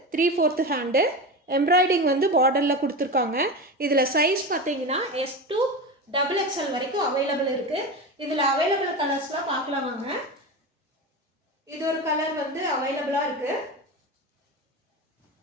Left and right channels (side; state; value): both; normal; correlation 0.24